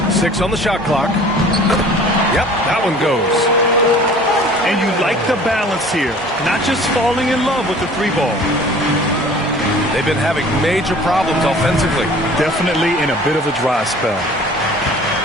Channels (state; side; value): normal; both; correlation 0.47